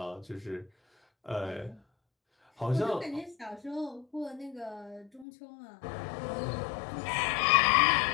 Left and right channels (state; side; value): drops out; right; at 5.2 s